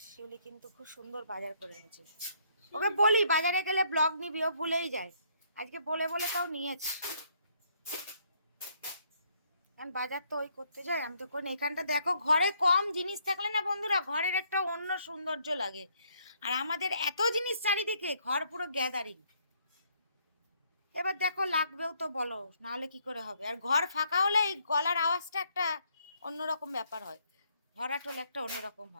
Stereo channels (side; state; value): both; inverted; correlation -0.69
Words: শিউলি কিন্তু খুব সুন্দর বাজার করে এনেছে। ওকে বলি বাজারে গেলে ব্লগ নিবি, ও ভুলেই যায়। আজকে বলে বলে তাও নিয়েছে। কারণ বাজার তো ওই করতে যায়, আমি তো করি। এখানটা দেখো, ঘরে কম জিনিস থাকলে না বন্ধুরা, ঘরের একটা অন্য সৌন্দর্য লাগে। আর আমাদের এত জিনিস চারিদিকে, ঘর পুরো গ্যাদারিং। এবার দেখো লাগবেও তো বলো, নাহলে কি করে হবে। আর ঘর ফাঁকা হলে এই গলার আওয়াজটা একটা অন্যরকম ব্যাপার হয়, ভরাটোল একটা অন্যরকম